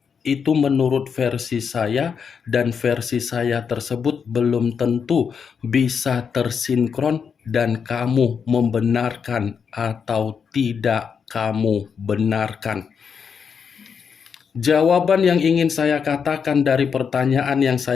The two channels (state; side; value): quieter; right; 6.5 dB